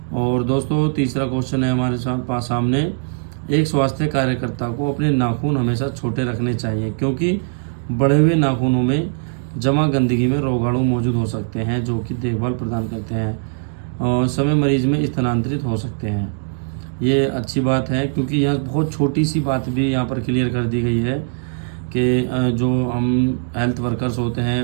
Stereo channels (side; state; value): left; silent; digital silence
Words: और दोस्तों, तीसरा क्वेश्चन है हमारे पास सामने, एक स्वास्थ्य कार्यकर्ता को अपने नाखून हमेशा छोटे रखने चाहिए, क्योंकि बढ़े हुए नाखूनों में जमा गंदगी में रोगाणु मौजूद हो सकते हैं जो कि देखभाल प्रदान करते हैं और समय मरीज में स्थानांतरित हो सकते हैं। ये अच्छी बात है, क्योंकि यहाँ बहुत छोटी सी बात भी यहाँ पर क्लियर कर दी गई है कि जो हम हेल्थ वर्कर्स होते हैं